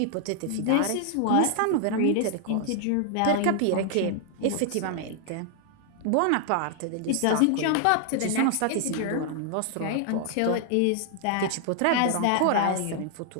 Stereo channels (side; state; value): both; different; correlation 0.00